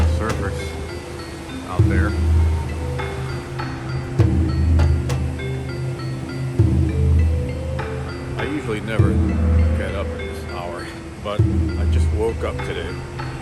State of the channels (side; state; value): both; identical; correlation 1.00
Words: surfers out there. I usually never get up at this hour, but I just woke up today